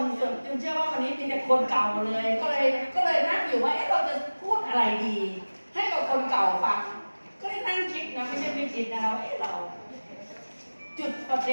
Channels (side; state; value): both; inverted; correlation -1.00